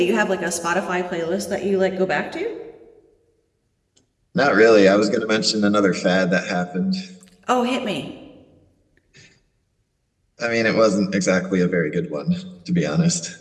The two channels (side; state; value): both; identical; correlation 1.00